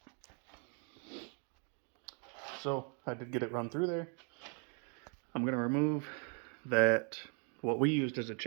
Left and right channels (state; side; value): quieter; left; 39.6 dB